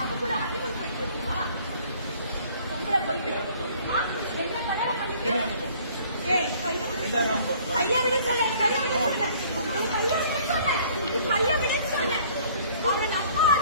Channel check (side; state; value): both; inverted; correlation -0.55